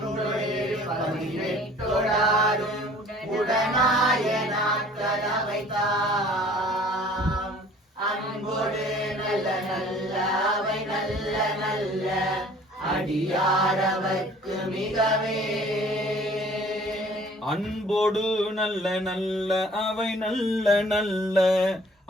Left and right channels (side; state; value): both; normal; correlation 0.52